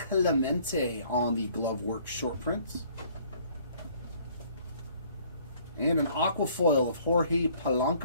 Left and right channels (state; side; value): inverted; both; correlation -0.59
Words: on the glove work short print. And an aqua foil of Jorge